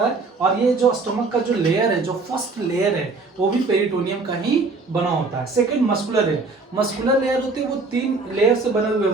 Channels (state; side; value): quieter; left; 3.8 dB